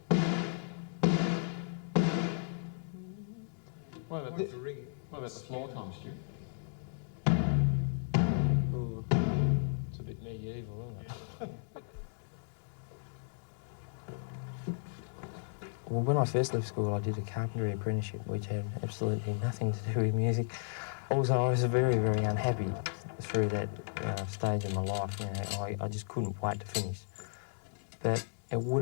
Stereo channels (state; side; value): silent; right; digital silence